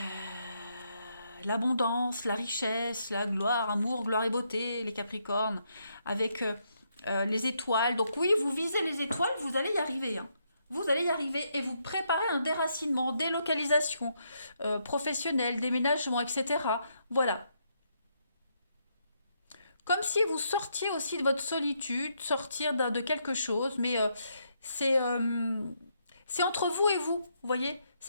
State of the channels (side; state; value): both; inverted; correlation -0.77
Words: L'abondance, la richesse, la gloire, amour, gloire et beauté, les Capricornes. Avec les étoiles. Donc oui, vous visez les étoiles, vous allez y arriver. Hein. Vous allez y arriver et vous préparez un déracinement, délocalisation professionnelle, déménagement, etc. Voilà. Comme si vous sortiez aussi de votre solitude, sortir de quelque chose, mais c'est c'est entre vous et vous, voyez?